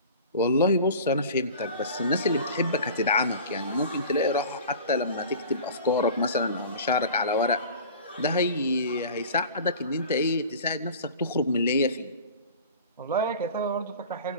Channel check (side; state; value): both; inverted; correlation -0.40